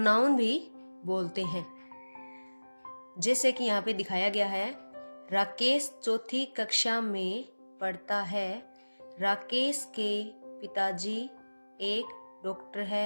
भी बोलते हैं। जैसे कि यहाँ पे दिखाया गया है, राकेश चौथी कक्षा में पढ़ता है। राकेश के पिताजी एक डॉक्टर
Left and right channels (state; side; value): inverted; both; correlation -1.00